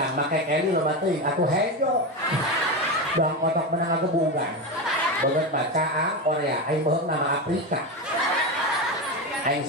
make Kelly loba teuing atuh hejo. Dong kotok menang agebugan. Beungeut bacaan Korea, aing beuheung nama Afrika. Aing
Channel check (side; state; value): both; normal; correlation 0.17